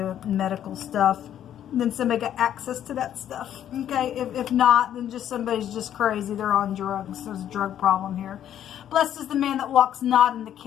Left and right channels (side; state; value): right; quieter; 10.5 dB